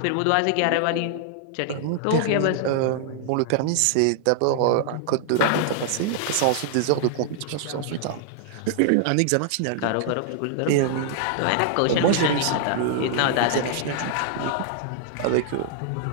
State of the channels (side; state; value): both; different; correlation -0.01